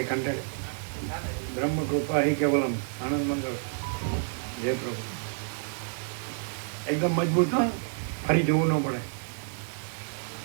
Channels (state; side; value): silent; left; 58 dB below the other